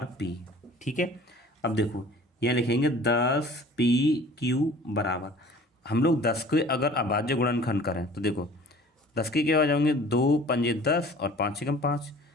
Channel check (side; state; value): both; normal; correlation 0.47